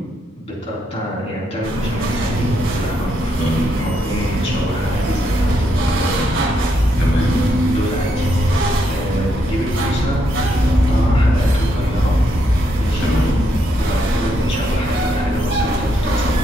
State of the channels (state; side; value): normal; both; correlation 0.77